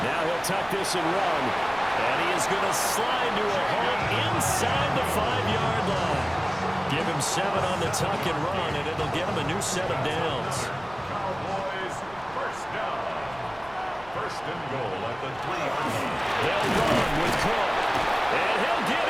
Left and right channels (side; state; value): right; noise; rumble, 22 dB below the sound